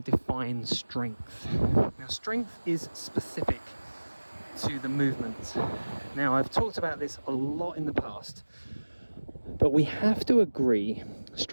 to define strength. Now, strength is specific to the movement. Now, I've talked about this a lot in the past, but we have to agree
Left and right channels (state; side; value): inverted; both; correlation -1.00